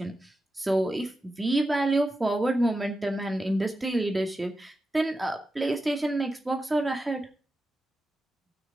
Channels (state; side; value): normal; both; correlation 0.91